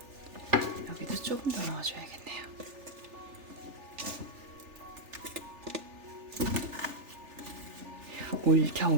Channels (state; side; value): late; left; 3.4 ms